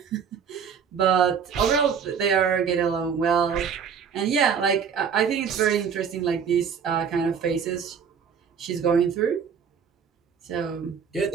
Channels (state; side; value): quieter; left; 6.9 dB